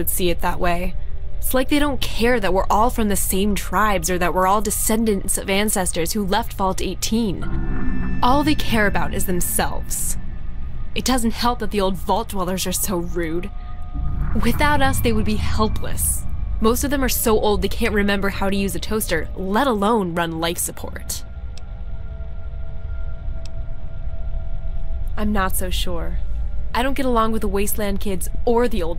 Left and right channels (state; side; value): identical; both; correlation 1.00